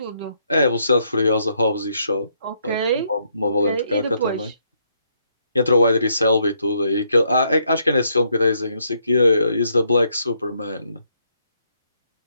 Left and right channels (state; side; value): inverted; both; correlation -0.74